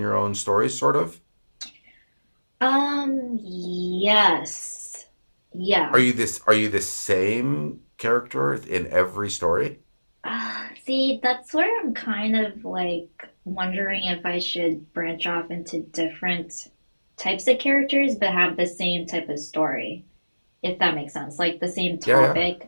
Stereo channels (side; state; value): both; inverted; correlation -1.00